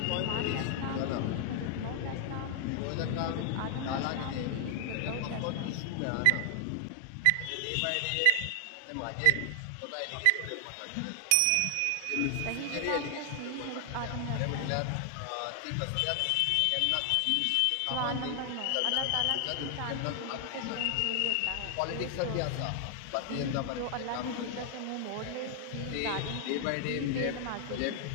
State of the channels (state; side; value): different; both; correlation 0.00